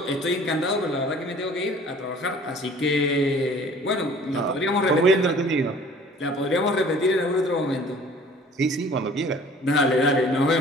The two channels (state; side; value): normal; both; correlation 0.50